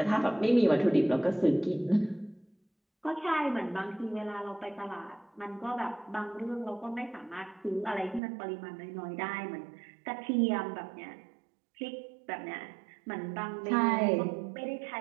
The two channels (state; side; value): drops out; left; at 8.2 s